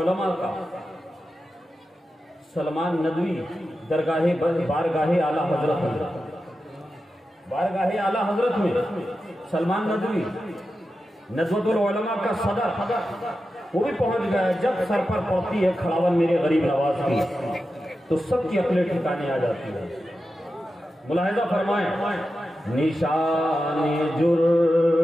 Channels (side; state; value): both; normal; correlation 0.91